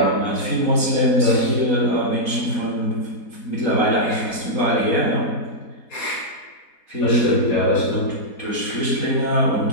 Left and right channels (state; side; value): late; right; 4.1 ms